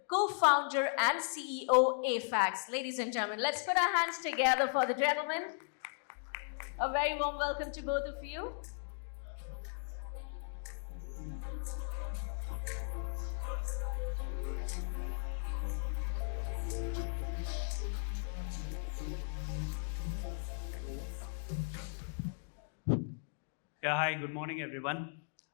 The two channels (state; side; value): silent; right; digital silence